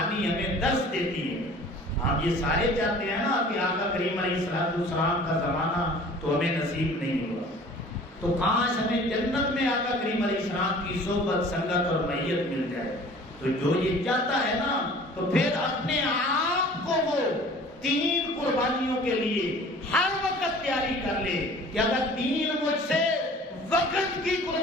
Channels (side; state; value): both; normal; correlation 0.47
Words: ہمیں درس دیتی ہے. ہم یہ سارے چاہتے ہیں نا کہ آقا کریم علیہ السلام کا زمانہ تو ہمیں نصیب نہیں ہوا, تو کاش ہمیں جنت میں آقا کریم علیہ السلام کی صحبت سنگت اور معیت مل جائے. تو جو یہ چاہتا ہے نا تو پھر اپنے آپ کو وہ 3 قربانیوں کے لیے ہر وقت تیاری کر لے کہ اگر دین مجھ سے وقت کی